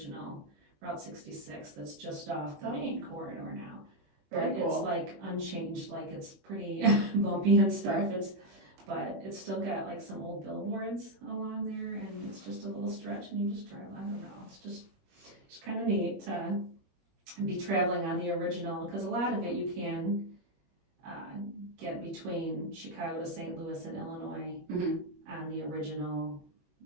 Route 66 that's just off the main corridor now. Very But cool. it's like unchanged, like it's pretty bumpy and stuff. But it's still got like some old billboards along there, and it's just a little stretch, and you just drive. I don't know. It's just neat to be traveling on the original, because a lot of it you can get between Chicago to St. Louis and Illinois on the original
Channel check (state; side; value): late; left; 21 ms